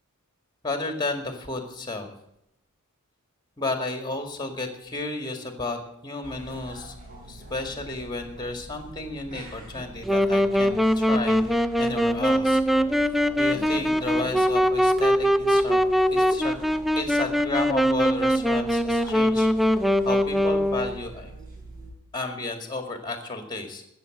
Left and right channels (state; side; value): normal; both; correlation 0.84